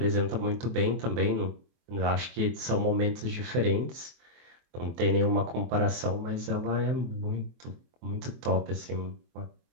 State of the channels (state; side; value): late; left; 23 ms